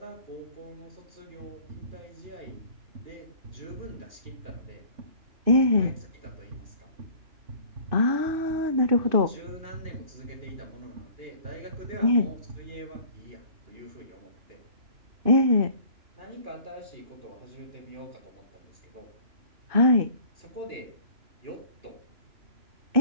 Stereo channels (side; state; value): left; late; 2.6 ms